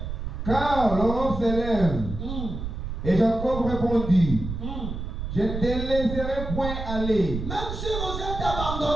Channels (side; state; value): right; noise; rumble, 5 dB below the sound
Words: car l'aurore s'élève. Et Jacob répondit, je ne te laisserai point aller. Même si vous êtes